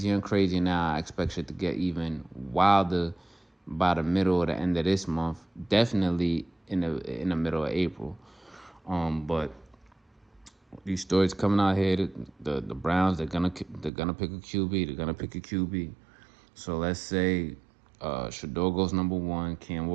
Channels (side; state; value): left; drops out; at 13.9 s